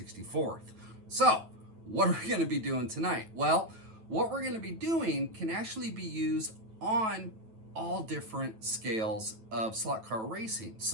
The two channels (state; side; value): late; left; 9.2 ms